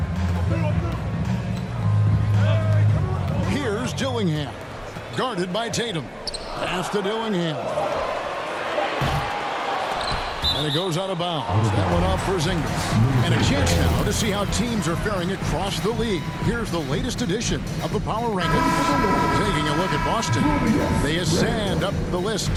Here's Dillingham. Guarded by Tatum. Pass to Dillingham. And it goes out of bounds. That one off for Porzingis. And a chance now to see how teams are faring across the league. Here's the latest edition of the Power Rankings. Taking a look at Boston. They ascend up the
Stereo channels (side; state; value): both; identical; correlation 1.00